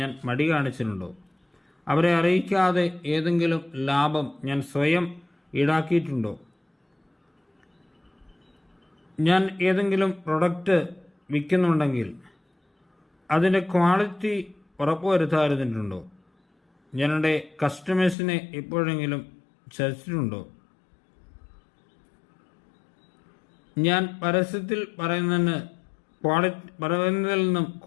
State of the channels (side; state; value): right; drops out; at 18.2 s